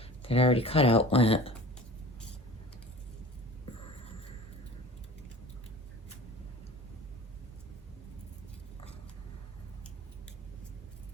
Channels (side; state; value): both; normal; correlation 0.40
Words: that I already cut out went.